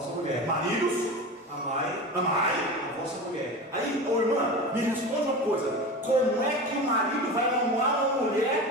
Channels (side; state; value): both; normal; correlation 0.29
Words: mulher. maridos, Amai amai. a vossa mulher. Aí, ô irmã, me responde uma coisa. Como é que o marido vai amar uma